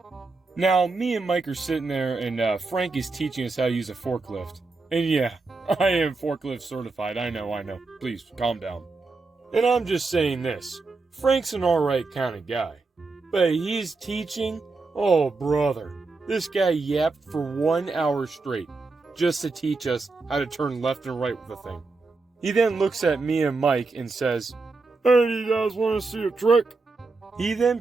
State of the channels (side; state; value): left; quieter; 3.8 dB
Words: Now, me and Mike are sitting there, and Frank is teaching us how to use a forklift. And yeah, I am forklift certified. I know. Please, calm down. And I'm just saying this. Frank's an alright kind of guy. But he's teaching? Oh, brother. This guy yapped for 1 hour straight, just to teach us how to turn left and right with the thing. He then looks at me and Mike and says, "Hey, do you guys want to see a trick?" He